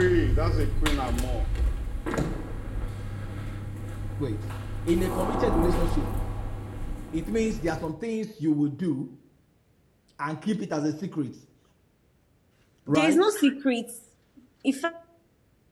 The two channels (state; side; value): identical; both; correlation 1.00